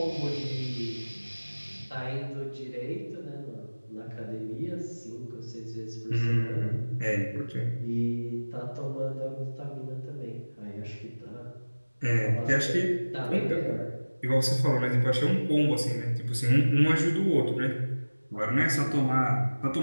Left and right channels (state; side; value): inverted; both; correlation -1.00